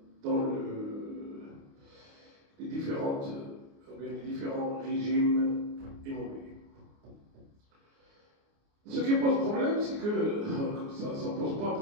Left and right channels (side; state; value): left; late; 29 ms